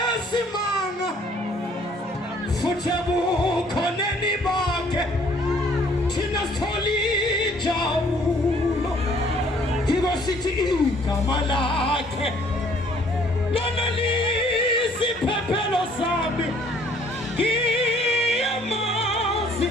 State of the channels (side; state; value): both; normal; correlation 0.60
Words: futhi bukhoneni bakhe thina sithola injabulo yebo sithi igama lakhe lona lisiphephelo sami ngiyamazi